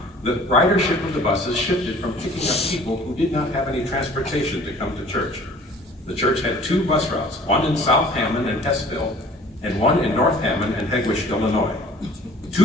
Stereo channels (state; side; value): normal; both; correlation 0.51